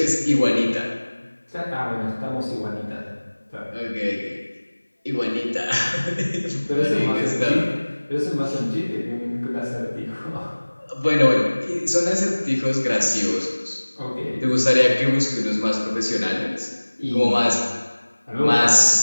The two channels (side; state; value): both; inverted; correlation -1.00